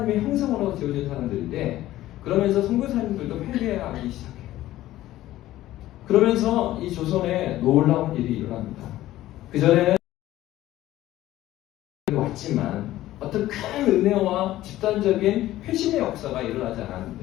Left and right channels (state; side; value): quieter; right; 15.0 dB